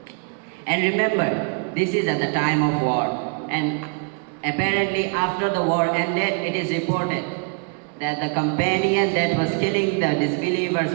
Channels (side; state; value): left; quieter; 38.5 dB